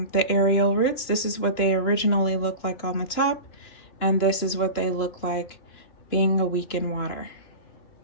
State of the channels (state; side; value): late; right; 2.9 ms